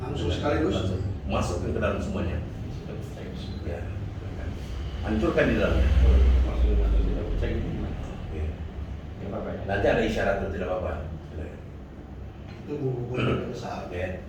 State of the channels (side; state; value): both; identical; correlation 1.00